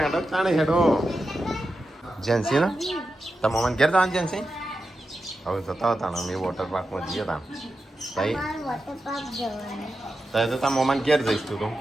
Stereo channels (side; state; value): both; normal; correlation 0.90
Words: ચાણે હેડો જેન્સી ને તમે મમ્મી ઘેર જવાનું જેન્સી હવે જતા હતા ને અમે વોટર પાર્કમાં જઈએ તા તઈ વોટર પાર્ક જવાનું તઈ તો તાર મમ્મી ઘેર જઈશ તું તો